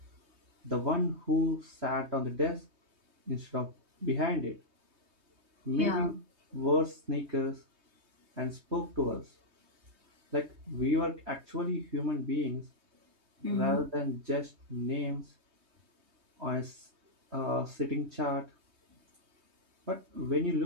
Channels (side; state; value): left; late; 3.2 ms